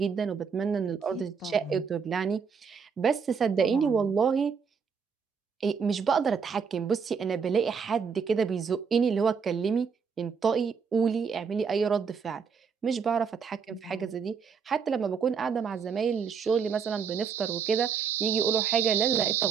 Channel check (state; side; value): quieter; left; 6.2 dB